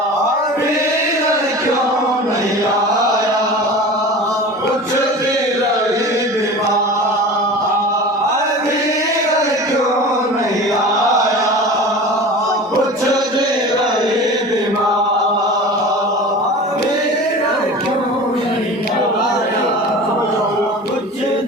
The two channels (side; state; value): both; normal; correlation 0.36